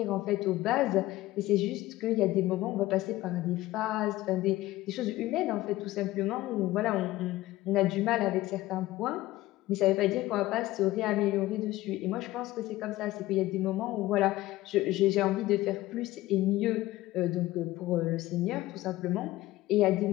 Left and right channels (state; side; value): quieter; right; 17.0 dB